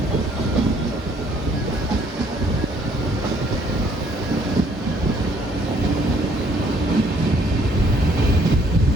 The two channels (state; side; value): normal; both; correlation 0.64